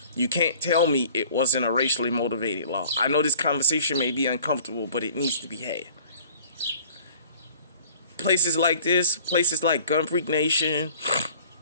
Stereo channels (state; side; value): inverted; both; correlation -0.49